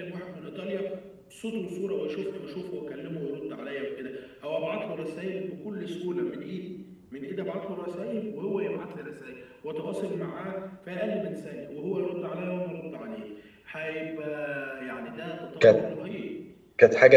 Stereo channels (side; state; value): both; identical; correlation 1.00